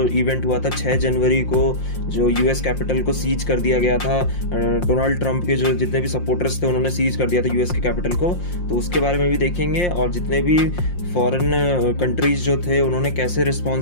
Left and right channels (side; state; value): right; late; 5.7 ms